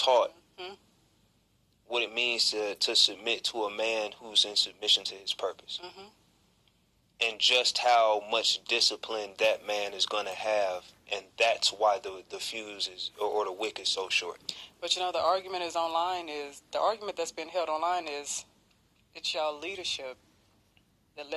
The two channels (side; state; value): both; identical; correlation 1.00